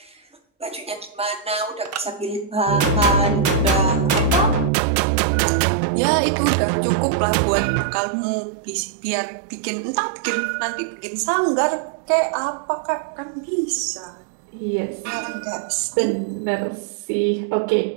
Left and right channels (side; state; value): left; drops out; at 4.7 s